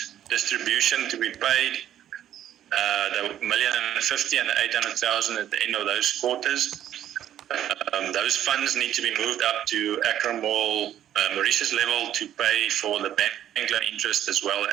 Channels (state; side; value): quieter; left; 11.2 dB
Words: distribution to be paid, the $1,050,000 and the $800,000 at the end of those quarters. Those funds need to be moved up to Accra Mall, Mauritius level, to pay for the bank loan interest as well